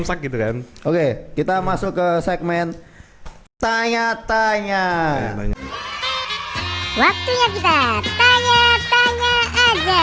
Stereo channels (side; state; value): both; identical; correlation 1.00